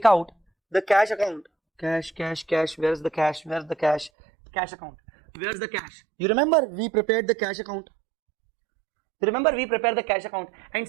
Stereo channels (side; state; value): left; drops out; at 4.1 s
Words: where's the cash? Cash account. Where's the cash? You remember we prepared the cash account. And